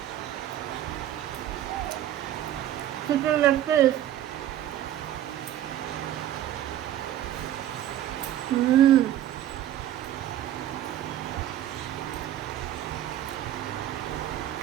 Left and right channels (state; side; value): quieter; left; 12.2 dB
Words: চিকেন লেগ পিস,